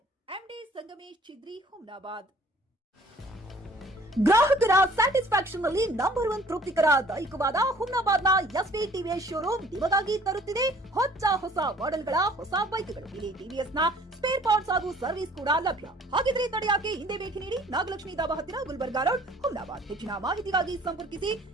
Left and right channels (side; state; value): both; normal; correlation 0.54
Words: ಎಂಡಿ ಸಂಗಮೇಶ್ ಚಿದ್ರಿ, ಹುಮ್ನಾಬಾದ್. ಗ್ರಾಹಕರ ಸ್ಯಾಟಿಸ್ಫ್ಯಾಕ್ಷನ್ ನಲ್ಲಿ ನಂಬರ್ 1 ತೃಪ್ತಿಕರ ದೈಹಿಕವಾದ ಹುಮ್ನಾಬಾದ್ನ ಎಸ್ವಿ ಟಿವಿಎಸ್ ಶೋರೂಮ್ ನಿಮಗಾಗಿ ತರುತ್ತಿದೆ ಹೊಸ ಮಾಡೆಲ್ಗಳ ಹೊಸ ಬೈಕ್ಗಳು. ಇಲ್ಲಿ ಟಿವಿಎಸ್ ನ ಸ್ಪೇರ್ ಪಾರ್ಟ್ಸ್ ಹಾಗೂ ಸರ್ವಿಸ್ ಕೂಡ ಲಭ್ಯ. ಹಾಗಿದ್ರೆ ತಡೆಯಾಕೆ ಹಿಂದೆ ಭೇಟಿ ನೀಡಿ. ನಾಗಲಕ್ಷ್ಮಿ ದಾಬಾ ಹತ್ತಿರ, ಗುಲ್ಬರ್ಗಾ ರೋಡ್, ಹುಮ್ನಾಬಾದ್. ಹೆಚ್ಚಿನ ಮಾಹಿತಿಗಾಗಿ ಸಂಪರ್ಕಿಸಿ